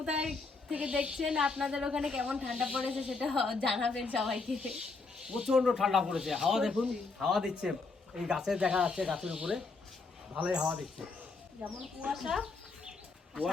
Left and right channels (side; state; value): right; quieter; 4.0 dB